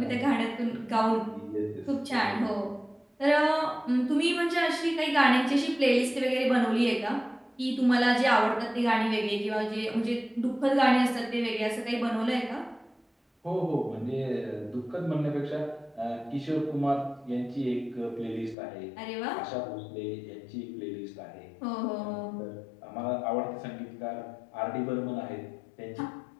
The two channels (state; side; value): drops out; right; at 18.6 s